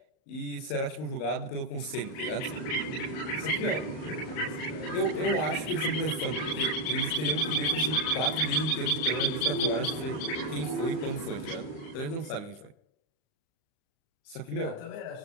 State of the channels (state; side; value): late; right; 38 ms